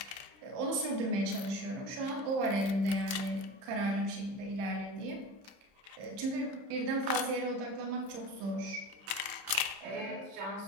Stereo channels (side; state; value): left; late; 30 ms